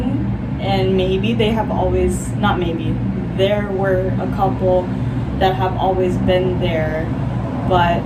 and maybe they have always, not maybe, there were a couple that have always been there, but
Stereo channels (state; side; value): identical; both; correlation 1.00